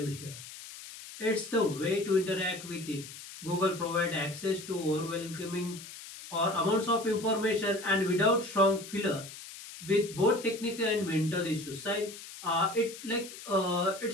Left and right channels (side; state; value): left; noise; hiss, 14 dB below the sound